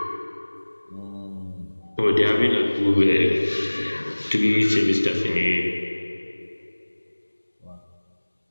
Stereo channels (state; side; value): inverted; both; correlation -1.00